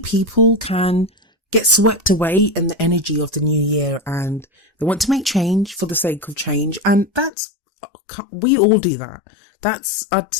can get swept away in the energy of the new year, and they want to make change for the sake of change. And we all do that. That's, I'd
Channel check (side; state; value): right; drops out; at 7.3 s